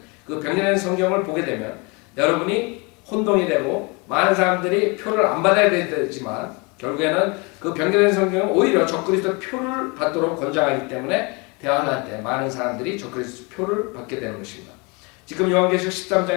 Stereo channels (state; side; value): quieter; right; 29.3 dB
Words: 그 변개된 성경을 보게 되면 여러분이 혼동이 되고 많은 사람들이 표를 안 받아야 되지만 결국에는 그 변개된 성경은 오히려 적그리스도의 표를 받도록 권장하기 때문에 대환란 때 많은 사람들이 적그리스도 표를 받게 되는 것입니다. 지금 요한계시록